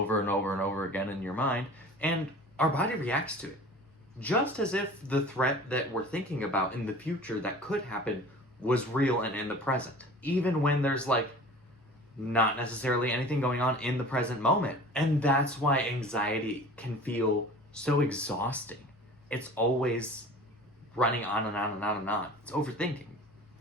and over and over again in your mind, and our body reacts to it. Just as if the threat that we're thinking about in the future that could happen was real and in the present. Even when there's like not necessarily anything going on in the present moment. And that's why anxiety can feel so exhausting. It's always running on and on and on and on. It's overthinking,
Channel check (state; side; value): normal; both; correlation 0.42